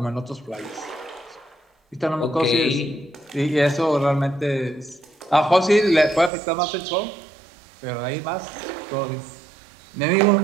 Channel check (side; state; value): left; drops out; at 6.3 s